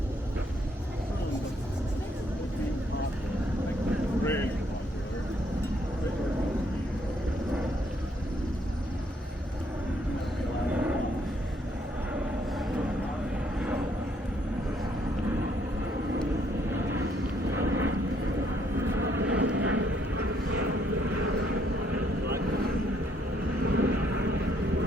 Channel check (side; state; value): both; normal; correlation 0.69